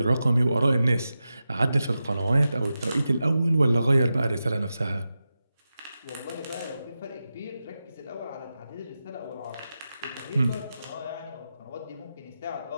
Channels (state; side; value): inverted; both; correlation -0.91